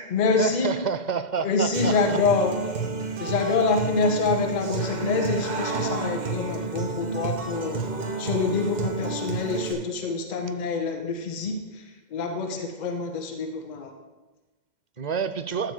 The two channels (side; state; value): right; late; 2.1 ms